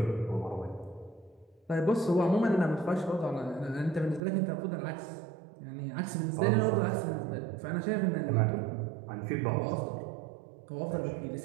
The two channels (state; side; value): drops out; left; at 4.2 s